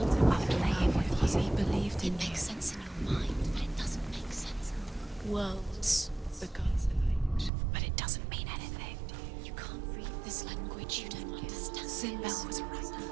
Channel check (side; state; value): left; drops out; at 7.5 s